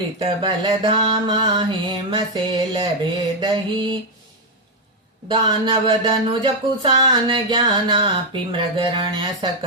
बलधामा हेम शैल भेदहि दानव धनुज कुशान ज्ञानापि मृगरण्य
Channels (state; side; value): normal; both; correlation 0.01